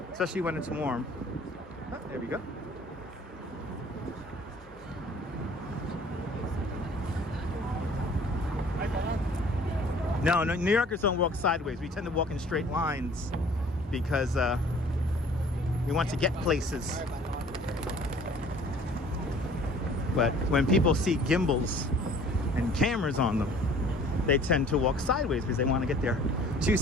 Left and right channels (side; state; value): both; normal; correlation 0.52